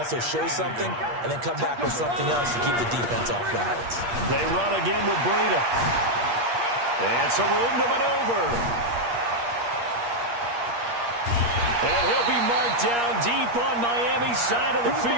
show something and then come back with something else to keep the defense off balance. They run again with Breida. And some room to maneuver. And he'll be marked down deep on Miami's side of the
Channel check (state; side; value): late; left; 8.5 ms